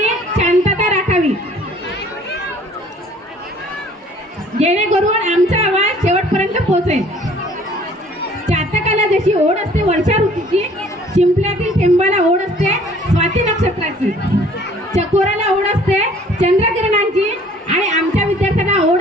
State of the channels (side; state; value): both; normal; correlation 0.55